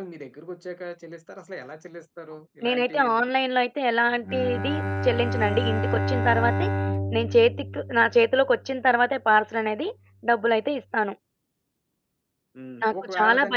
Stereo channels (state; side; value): identical; both; correlation 1.00